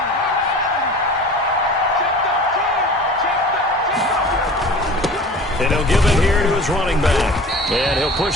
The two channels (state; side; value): normal; both; correlation 0.40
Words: And he'll give it here to his running back. And he'll